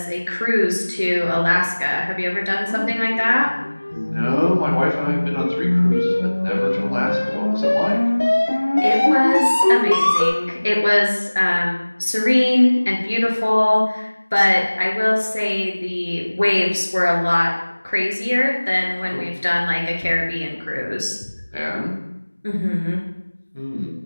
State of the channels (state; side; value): inverted; both; correlation -1.00